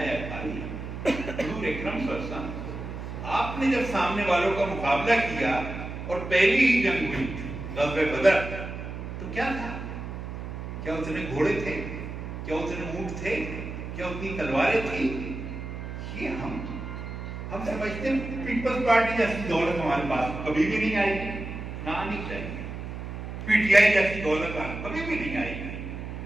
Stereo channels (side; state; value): right; noise; hum, 8 dB below the sound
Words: خالی. حضور اکرم صلی اللہ علیہ وسلم, آپ نے جب سامنے والوں کا مقابلہ کیا اور پہلی ہی جنگ ہوئی غزوہ بدر, تو کیا تھا؟ کیا اتنے گھوڑے تھے؟ کیا اتنے اونٹ تھے؟ کیا اتنی تلواریں تھی؟ یہ ہم سمجھتے ہیں پیپلز پارٹی جیسی دولت ہمارے پاس کبھی بھی نہیں آئی گی، نہ آنی چاہیے. پی ٹی آئی جیسی دولت کبھی بھی نہیں آئی گی.